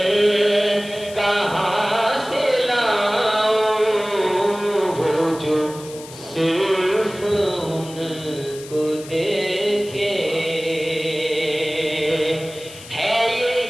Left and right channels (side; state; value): left; noise; hiss, 17 dB below the sound